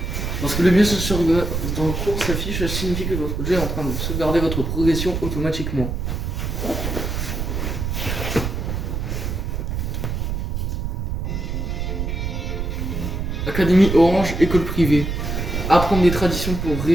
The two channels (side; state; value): right; noise; rumble, 2 dB below the sound